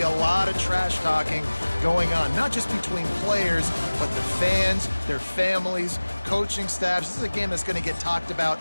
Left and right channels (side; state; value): both; inverted; correlation -1.00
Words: a lot of trash talking going on, not just between players, but the fans, their families, coaching staffs. This is a game that's going to get talked about